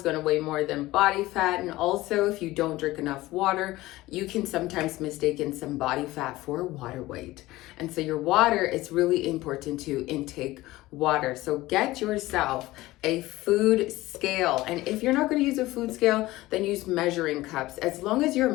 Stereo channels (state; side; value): quieter; right; 18.1 dB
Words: going to weigh more than body fat. And also, if you don't drink enough water, you can sometimes mistake some body fat for water weight. And so your water, it's really important to intake water. So get yourself a food scale. And if you're not going to use a food scale, then use measuring cups, as long as you're